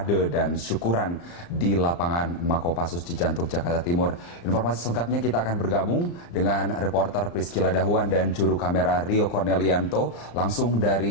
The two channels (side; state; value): right; late; 35 ms